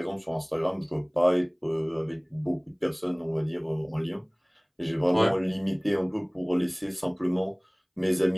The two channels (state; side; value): identical; both; correlation 1.00